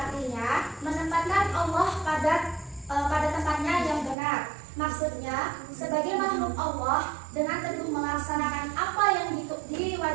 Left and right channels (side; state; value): left; drops out; at 4.2 s